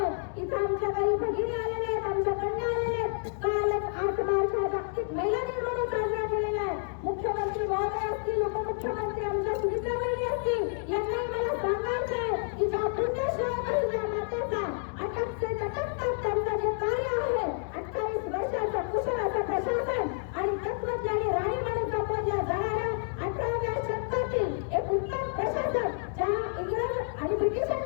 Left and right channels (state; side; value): silent; right; 57 dB below the other